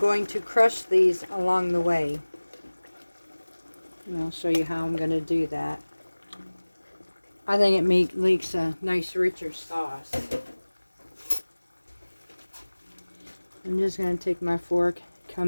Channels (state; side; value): inverted; both; correlation -1.00